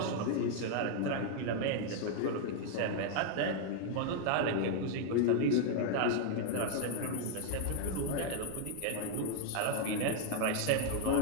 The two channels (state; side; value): different; both; correlation 0.00